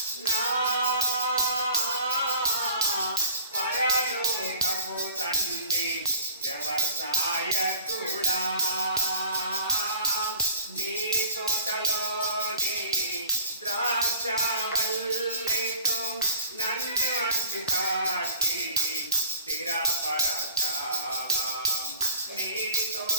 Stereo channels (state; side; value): inverted; both; correlation -0.48